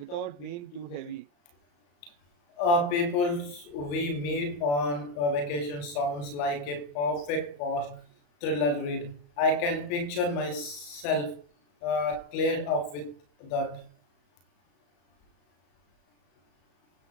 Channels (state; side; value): late; right; 35 ms